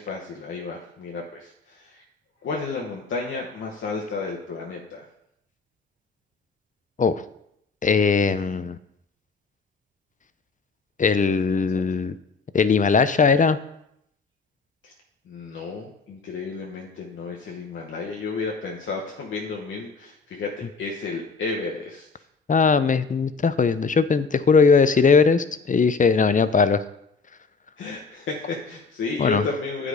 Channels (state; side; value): quieter; right; 4.7 dB